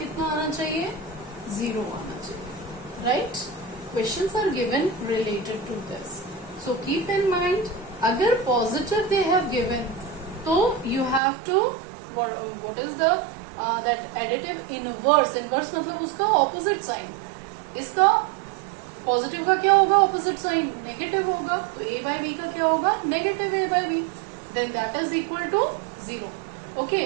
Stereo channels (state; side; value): drops out; left; at 11.2 s